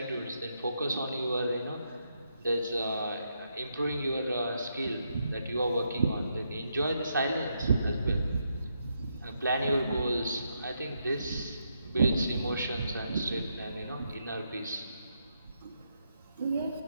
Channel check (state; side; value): inverted; both; correlation -0.80